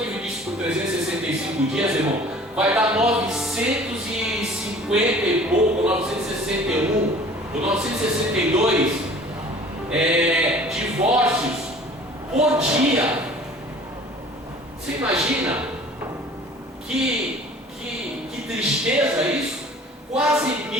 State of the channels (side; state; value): both; normal; correlation 0.48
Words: irmão, vai dar 950 e pouco, 961 ou 962 divórcios por dia. Você imagina que tristeza isso? Quase